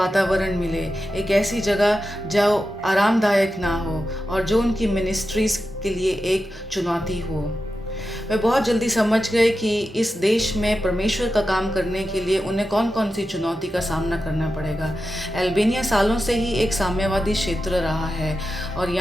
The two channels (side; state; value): both; normal; correlation 0.91